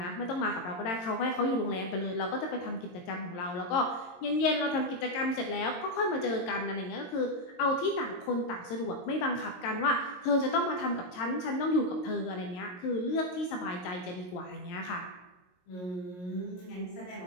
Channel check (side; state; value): right; late; 22 ms